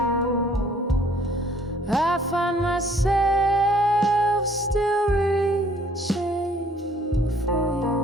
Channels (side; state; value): both; normal; correlation 0.60